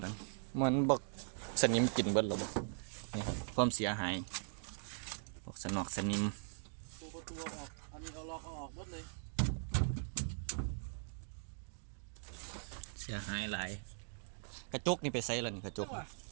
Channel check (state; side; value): silent; left; digital silence